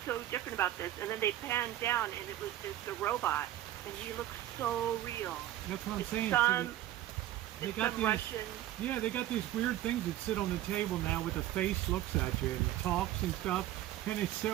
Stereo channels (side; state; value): left; quieter; 13.6 dB